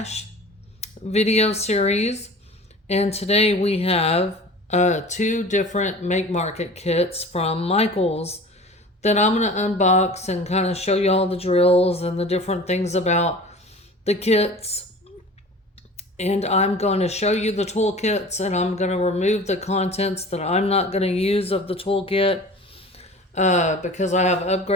video series. And today we have two different Make Market kits from Michaels that I'm going to unbox and kind of show you all the drills and the different things about the kits. And I'm going to show you the toolkits, and I'm going to remove the contents that I'm not going to use of the toolkit because I have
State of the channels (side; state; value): both; normal; correlation 0.40